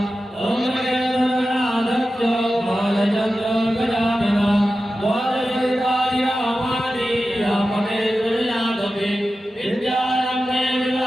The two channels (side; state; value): both; normal; correlation 0.93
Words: ओम गणनाथो बालचन्द्रो गजानना द्वादशयुगानि रामानि राममेश्वरयादवे विद्यारम्भे